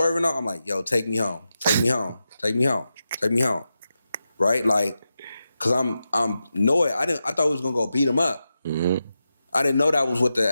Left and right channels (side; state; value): both; inverted; correlation -0.90